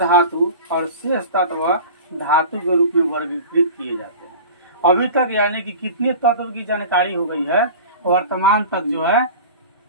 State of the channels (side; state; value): both; inverted; correlation -0.36